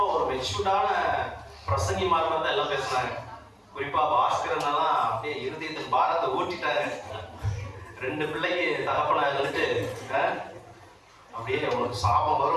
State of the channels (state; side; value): identical; both; correlation 1.00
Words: ஒரு மெச்சூர்டான பிரசங்கி மாதிரி தான் எல்லாம் பேசுனாங்க. குறிப்பா பாஸ்கரனெல்லாம் அப்படியே இருதயத்தின் பாரத்தை ஊட்டிட்டாரு. 2 பிள்ளைக்கு தகப்பனா இருந்துட்டு அப்படியே உனக்கு சாபம்